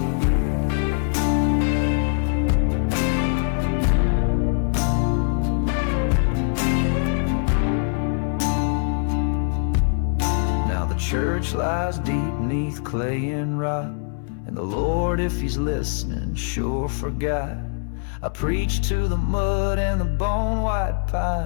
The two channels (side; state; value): right; silent; digital silence